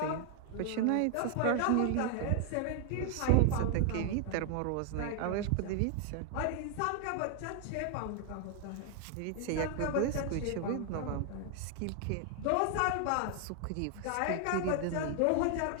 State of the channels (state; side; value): different; both; correlation 0.00